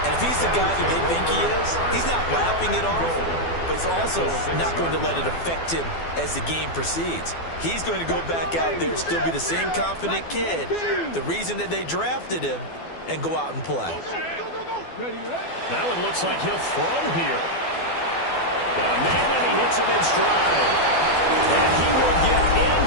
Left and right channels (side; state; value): right; late; 12 ms